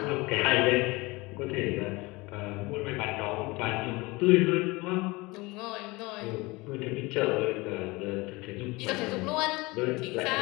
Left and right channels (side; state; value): right; quieter; 23.3 dB